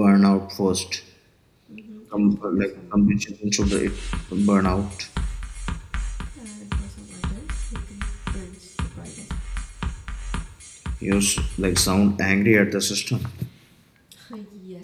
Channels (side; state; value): both; identical; correlation 1.00